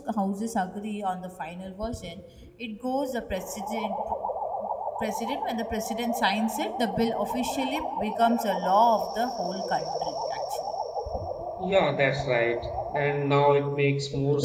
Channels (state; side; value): identical; both; correlation 1.00